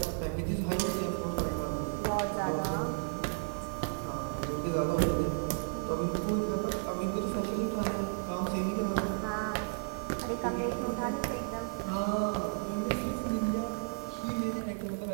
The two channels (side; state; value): left; silent; 56 dB below the other